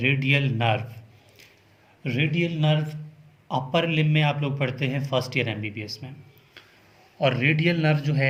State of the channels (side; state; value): both; identical; correlation 1.00